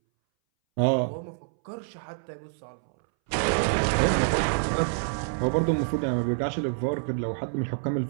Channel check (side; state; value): left; silent; 60 dB below the other